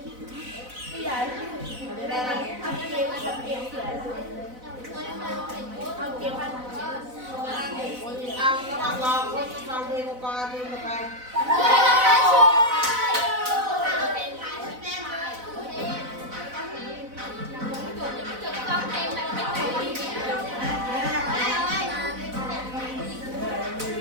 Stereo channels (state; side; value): late; left; 4.0 ms